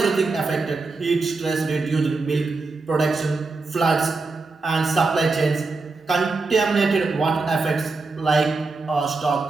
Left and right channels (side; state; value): left; quieter; 3.8 dB